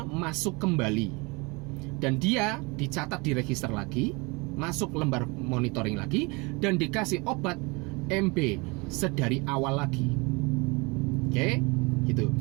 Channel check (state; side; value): quieter; left; 27.4 dB